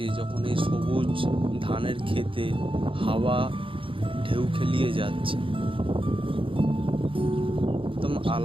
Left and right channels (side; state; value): left; late; 0.25 ms